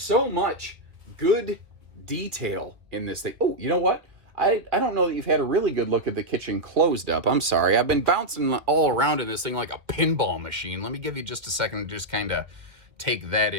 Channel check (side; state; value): left; late; 2.0 ms